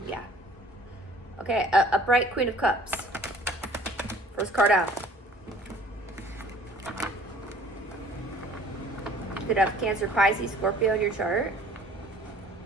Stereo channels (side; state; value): both; normal; correlation 0.52